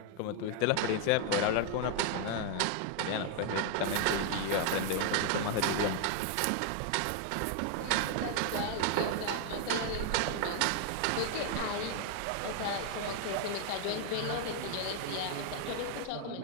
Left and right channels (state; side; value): different; both; correlation 0.00